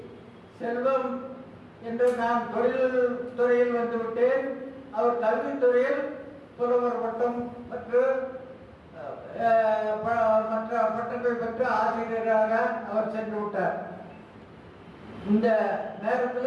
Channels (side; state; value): both; identical; correlation 1.00